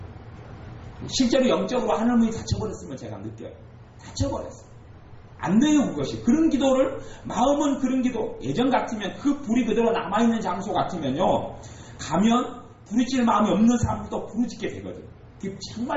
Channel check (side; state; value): both; identical; correlation 1.00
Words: 실제로 영적으로 하나님이 닫혀버렸으면 제가 느껴요. 닫혀버렸어요. 안 돼요 그것이. 그런 기도를 마음은 그런 기도 예전 같으면 그 불이 그대로 남아있는 장소 같으면요 가면 부르짖을 마음이 없는 사람도 부르짖게 되거든요.